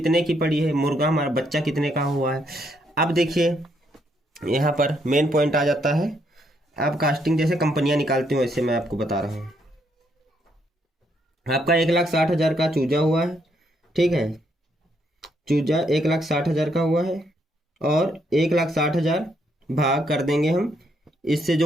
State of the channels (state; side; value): normal; both; correlation 0.74